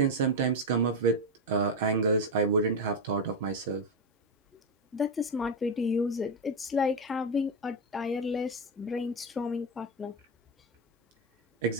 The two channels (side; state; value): both; normal; correlation 0.09